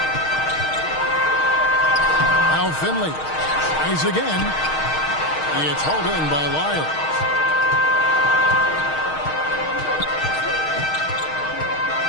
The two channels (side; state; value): right; late; 6.4 ms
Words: Now Finley tries again. It's hauled in by Lyles.